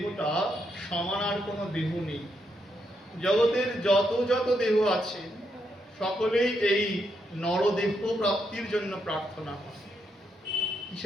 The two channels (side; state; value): both; normal; correlation 0.80